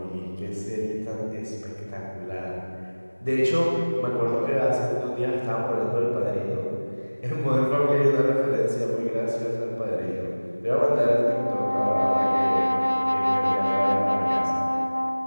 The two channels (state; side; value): inverted; both; correlation -1.00